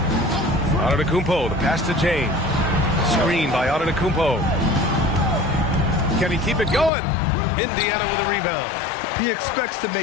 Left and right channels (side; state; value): right; drops out; at 6.9 s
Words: Antetokounmpo, the pass to James. Screen by Antetokounmpo. Can he keep it going? Indiana with a rebound. He expects to